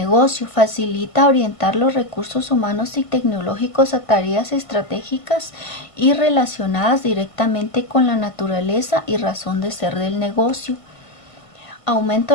facilita orientar los recursos humanos y tecnológicos a tareas estratégicas y relacionadas directamente con la naturaleza y razón de ser del negocio. Aumento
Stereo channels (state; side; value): late; right; 1.5 ms